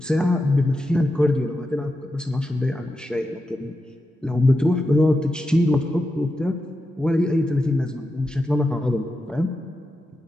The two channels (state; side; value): normal; both; correlation 0.88